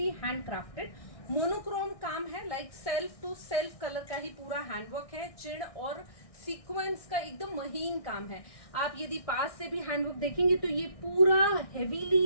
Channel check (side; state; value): right; late; 1.6 ms